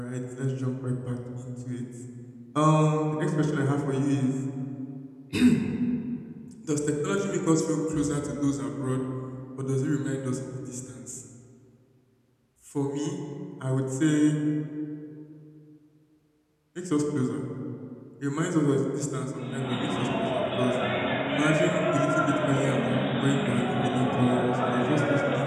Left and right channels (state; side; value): identical; both; correlation 1.00